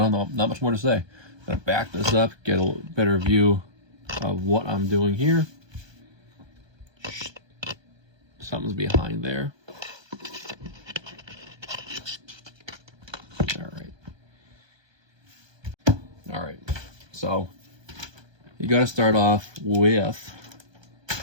not much more to say. I'm gonna back this up, get a better view of what I'm doing here. Something's behind there. All right. So you got to start off with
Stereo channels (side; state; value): left; late; 1.2 ms